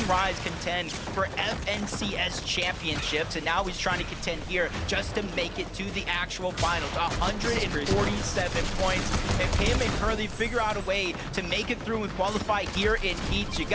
Rise contend for FNCS championships, and now he's trying to contend here just to make it to the actual finals. 147 points. If him and Curly figure out a way to make it through and qualify here in Heats, you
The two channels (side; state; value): both; identical; correlation 1.00